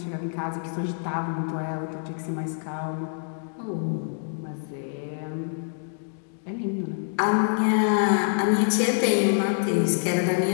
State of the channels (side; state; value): right; silent; digital silence